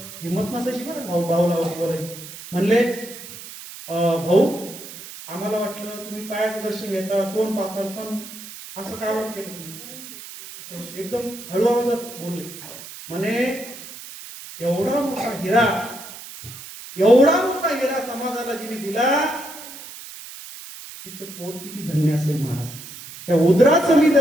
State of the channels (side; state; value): right; noise; hiss, 14 dB below the sound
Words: हिंमत नसायची बरं भाऊला बोलायची. म्हणले भाऊ आम्हाला वाटलं तुम्ही पायाचं दर्शन घेता, तोंड पाहता, पण असं काय वाट केलं तुम्ही? असं एकदम हळू आवाजात बोलले. म्हणे एवढा मोठा हिरा समाजाला जिने दिला, तिचं पोट किती धन्य असेल महाराज. त्या उदराचं मी